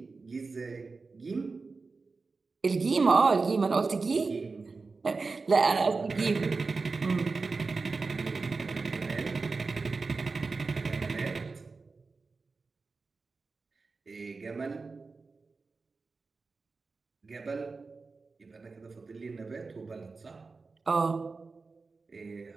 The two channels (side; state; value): left; quieter; 4.2 dB